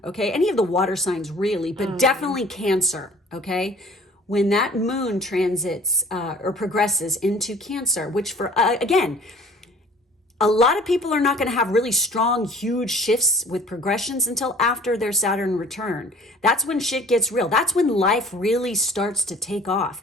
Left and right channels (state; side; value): normal; both; correlation 0.50